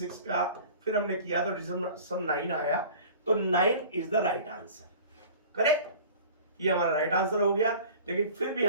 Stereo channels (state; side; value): inverted; both; correlation -0.43